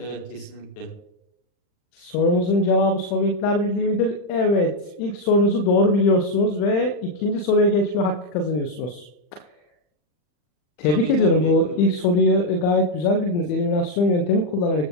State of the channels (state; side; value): late; right; 40 ms